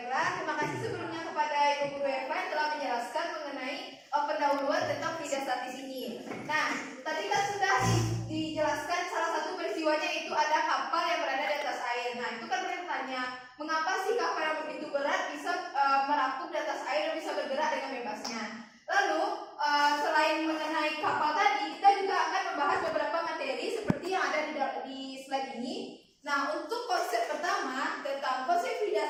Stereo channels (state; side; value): identical; both; correlation 1.00